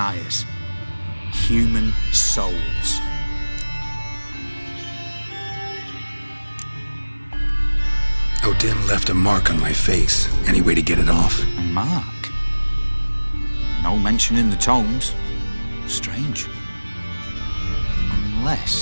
Human souls. O'Dim left a mark on my face. Any way to get it off? A mark? No mention in the tomes. Strange.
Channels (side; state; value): both; inverted; correlation -1.00